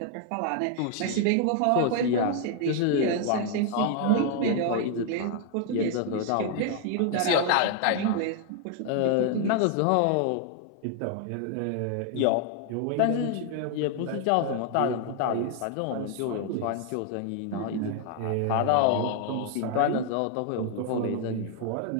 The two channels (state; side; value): different; both; correlation 0.00